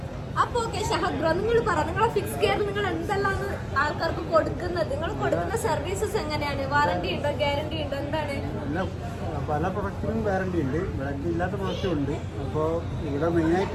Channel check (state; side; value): identical; both; correlation 1.00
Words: അപ്പൊ ഓക്കെ ഷഹദ് ബ്രോ, നിങ്ങൾ പറ, നിങ്ങളെ ഫിക്സ് കെയർ നിങ്ങൾ എന്തെല്ലാം ആൾക്കാർക്ക് കൊടുക്കുന്നത്? നിങ്ങൾ കൊടുക്കുന്ന സർവീസസ് എങ്ങനെയാണ്? വാറന്റി ഉണ്ടോ, ഗ്യാരണ്ടി ഉണ്ടോ, എന്താണ്? പല പ്രൊഡക്റ്റിനും വാറണ്ടി ഉണ്ട്, വാറണ്ടി ഇല്ലാത്ത പ്രൊഡക്റ്റും ഉണ്ട്. അപ്പോൾ ഇവിടെ